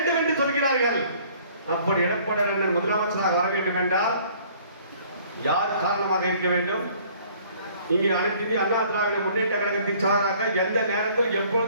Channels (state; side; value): inverted; both; correlation -0.56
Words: என்று சொல்கிறார்கள். அப்படி எடப்பாடியார் அண்ணன் முதலமைச்சராக வர வேண்டும் என்றால் யார் காரணமாக இருக்க வேண்டும்? இங்கே அனைத்து இந்திய அண்ணா திராவிட முன்னேற்ற கழகத்தின் சார்பாக எந்த நேரத்தில்